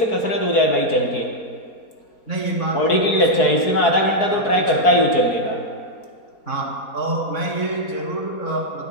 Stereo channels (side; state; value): right; late; 4.7 ms